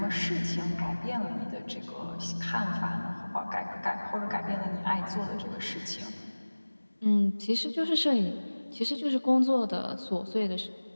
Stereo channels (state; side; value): inverted; both; correlation -1.00